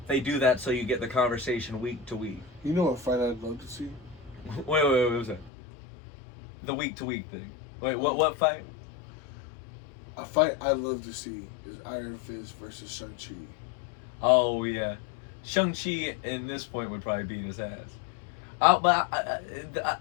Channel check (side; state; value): right; drops out; at 5.5 s